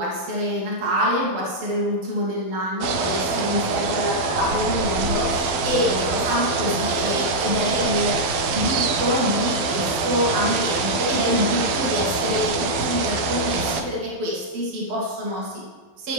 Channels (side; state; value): left; late; 12 ms